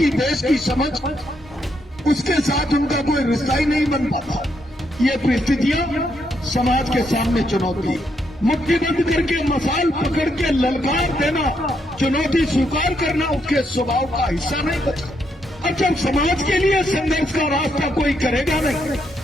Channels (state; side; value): normal; both; correlation 0.77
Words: देश की समझ उसके साथ उनका कोई रिश्ता ही नहीं बन पाता। ये परिस्थितियां समाज के सामने चुनौती, मुट्ठीबंद करके मसाल पकड़ के ललकार देना, चुनौती स्वीकार करना उसके स्वभाव का हिस्सा नहीं बचा। और जब समाज के लिए संघर्ष का रास्ता कोई करेगा नहीं,